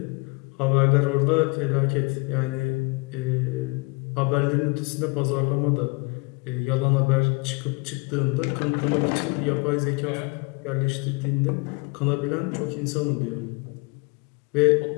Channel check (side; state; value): right; quieter; 27.6 dB